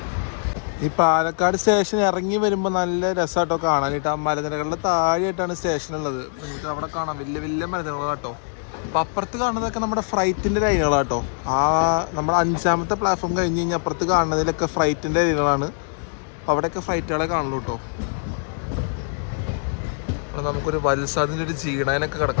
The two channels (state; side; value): silent; right; digital silence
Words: ഈ പാലക്കാട് സ്റ്റേഷൻ ഇറങ്ങി വരുമ്പോൾ നല്ല രസമായിട്ടോ കാണാനായിട്ട്. ആ മലനിരകളുടെ താഴെയായിട്ടാണ് സ്റ്റേഷൻ ഉള്ളത്. നിങ്ങൾക്ക് അവിടെ കാണാം വലിയ വലിയ മലനിരകളാട്ടോ. അപ്പം അപ്പുറത്ത് കാണുന്നതൊക്കെ നമ്മുടെ ഫ്രൈറ്റിൻ്റെ ലൈനുകളാട്ടോ. ആ നമ്മുടെ 5ാമത്തെ പ്ലാറ്റ്ഫോം കഴിഞ്ഞ് കഴിഞ്ഞാൽ അപ്പുറത്ത് കാണുന്നതിലൊക്കെ ഫ്രൈറ്റിൻ്റെ ലൈനുകളാണ്. അവിടെയൊക്കെ ഫ്ലൈറ്റുകളെ കാണുള്ളൂ കേട്ടോ. അവിടെ നമുക്കൊരു വത്സാദിൻ്റെ ഒരു ജീടാനൊക്കെ